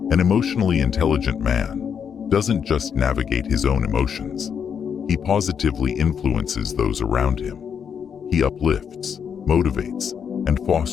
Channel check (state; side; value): quieter; right; 7.4 dB